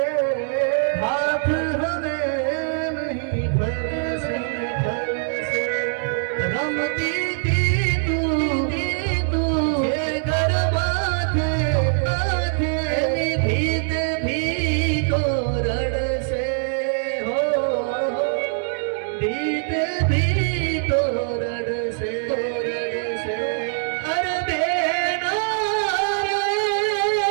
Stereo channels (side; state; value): left; silent; 64 dB below the other